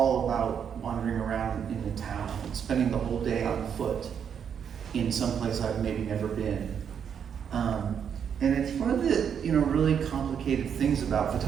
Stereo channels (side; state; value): left; quieter; 7.8 dB